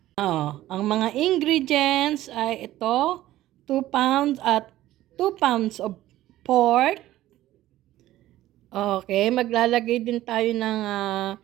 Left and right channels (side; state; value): left; quieter; 14.8 dB